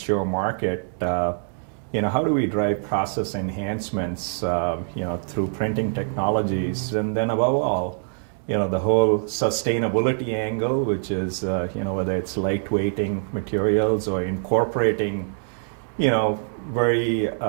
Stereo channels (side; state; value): left; silent; digital silence